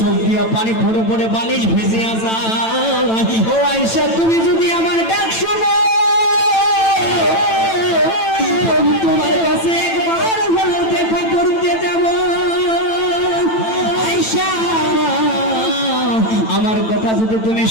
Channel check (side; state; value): right; late; 9.0 ms